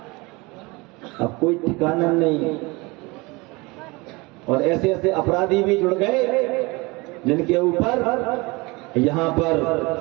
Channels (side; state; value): left; quieter; 24.9 dB